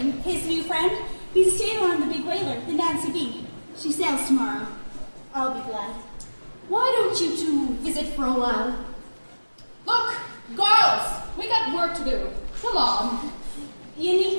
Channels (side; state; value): both; inverted; correlation -1.00